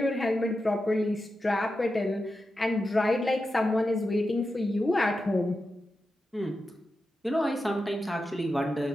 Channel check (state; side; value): normal; both; correlation 0.90